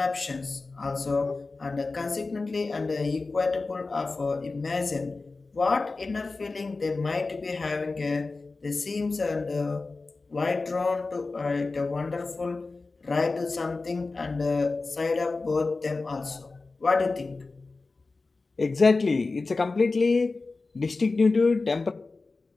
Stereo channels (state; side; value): quieter; right; 3.7 dB